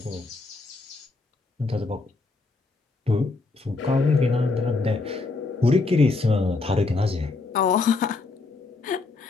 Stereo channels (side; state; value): right; quieter; 3.7 dB